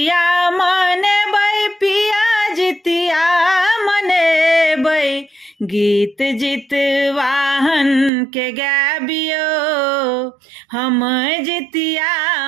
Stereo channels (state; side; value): drops out; left; at 8.1 s